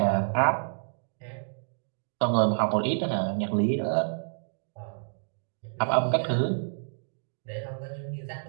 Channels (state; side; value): silent; left; digital silence